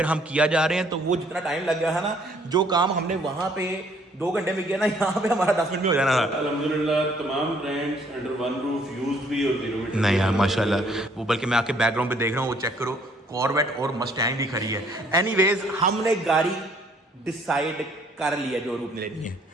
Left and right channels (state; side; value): normal; both; correlation 0.63